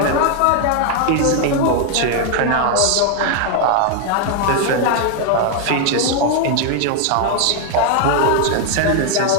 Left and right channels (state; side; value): different; both; correlation 0.00